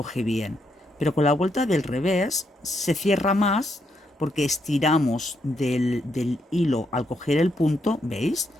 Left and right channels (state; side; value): normal; both; correlation 0.78